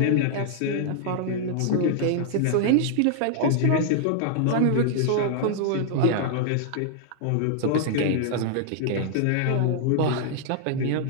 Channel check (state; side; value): different; both; correlation -0.01